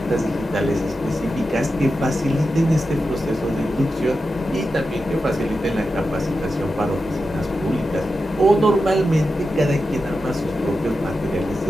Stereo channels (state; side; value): normal; both; correlation 0.90